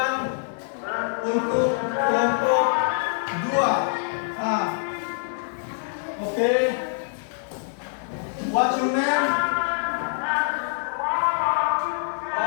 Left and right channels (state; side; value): silent; right; 62 dB below the other